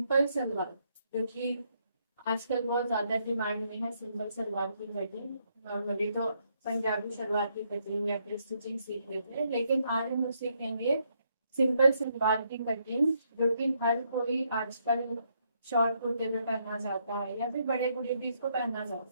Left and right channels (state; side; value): inverted; both; correlation -0.75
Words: सलवार, जो कि आजकल बहुत ज़्यादा डिमांड में है। सिंपल सलवार की कटिंग नॉर्मली तो पंजाबी सलवार की कटिंग या फिर स्टिचिंग सीख लेते हैं, लेकिन आज हम लोग सीखेंगे सिंपल सलवार की कटिंग, जो कि हर कोई आजकल शॉर्ट कुर्ते में पहनना चाहता है या फिर बड़े बूढ़े भी इसको पहनना चाहते